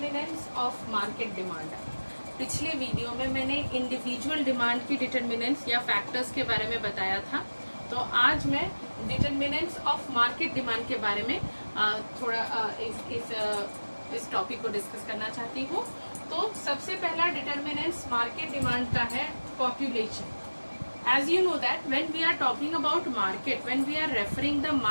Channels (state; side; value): inverted; both; correlation -1.00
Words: of market demand. पिछले video में मैंने individual demand की determinants या factors के बारे में बताया था, तो आज मैं डिटरमिनेंट्स ऑफ मार्केट डिमांड के बारे में थोड़ा इस टॉपिक को डिस्कस करना चाहती हूँ। तो सबसे पहला डिटरमिनेंट्स मार्केट डिमांड का है population. As you know that when we are talking about market, when we are referring the